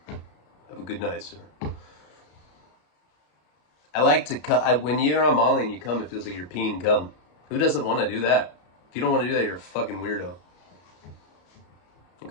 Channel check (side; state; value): right; late; 33 ms